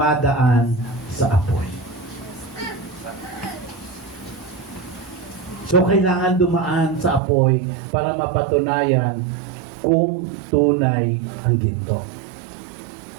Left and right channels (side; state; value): left; drops out; at 7.2 s